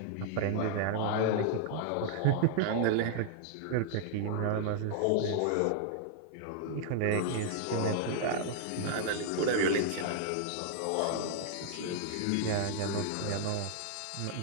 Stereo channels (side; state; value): both; different; correlation -0.01